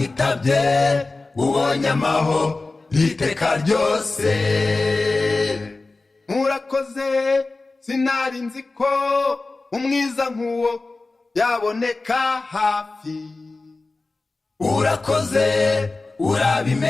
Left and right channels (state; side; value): quieter; right; 3.4 dB